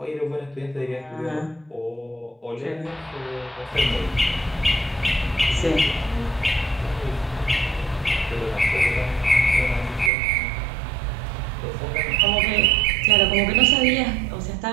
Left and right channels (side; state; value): left; drops out; at 10.1 s